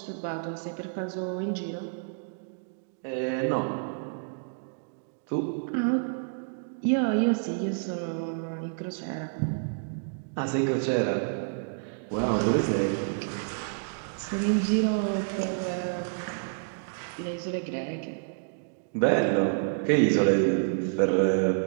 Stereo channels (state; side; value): silent; left; digital silence